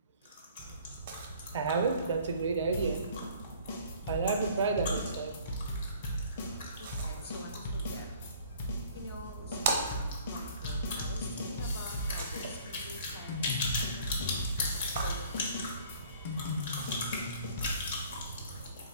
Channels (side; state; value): both; inverted; correlation -0.53